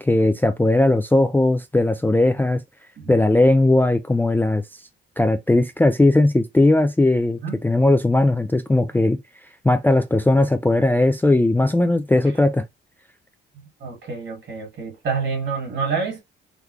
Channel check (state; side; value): normal; both; correlation 0.91